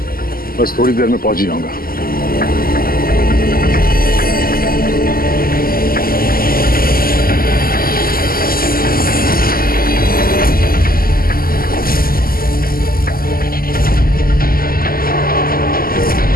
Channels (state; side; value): late; right; 0.42 ms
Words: बस थोड़ी देर में पहुंच ही जाऊंगा।